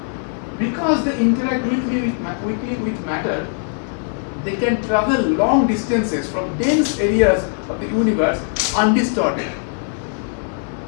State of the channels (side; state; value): right; silent; 64 dB below the other